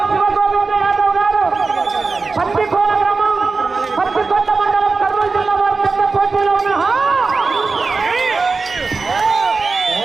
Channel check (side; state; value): left; quieter; 4.2 dB